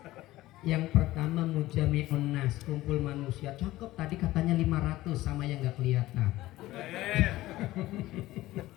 Yang pertama mujami'un nas, kumpul manusia. Cakep, tadi katanya 500 sama yang nggak kelihatan.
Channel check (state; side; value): quieter; right; 16.8 dB